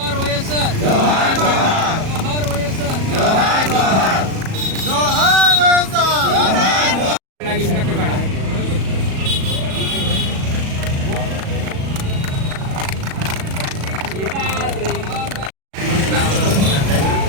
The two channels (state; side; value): late; left; 37 ms